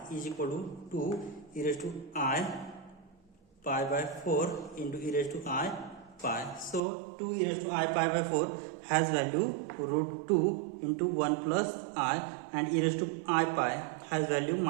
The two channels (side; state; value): left; drops out; at 6.8 s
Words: is equal to 2 e raised to I pi by 4 into e raised to I pi. So 2 e raised to I pi by 4 has value root 2 into 1 plus I, and e raised to I pi has value